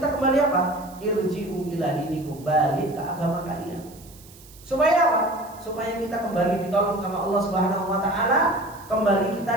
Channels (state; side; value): noise; right; hiss, 22 dB below the sound